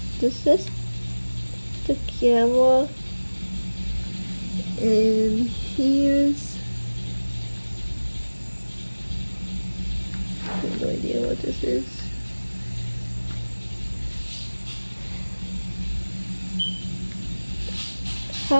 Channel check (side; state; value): both; inverted; correlation -1.00